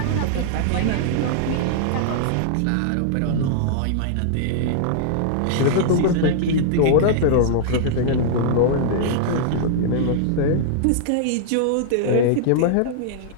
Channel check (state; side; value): different; both; correlation -0.01